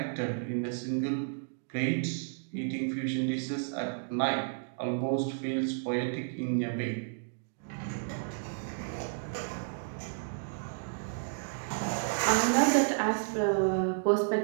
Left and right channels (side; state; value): left; silent; digital silence